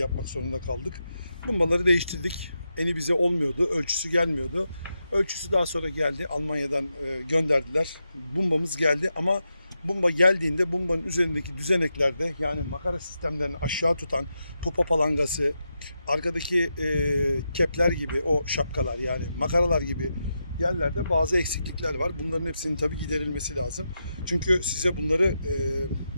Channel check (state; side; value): inverted; both; correlation -0.87